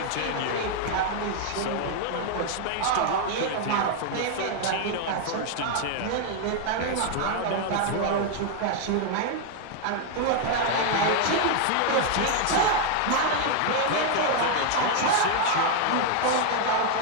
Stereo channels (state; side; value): different; both; correlation 0.00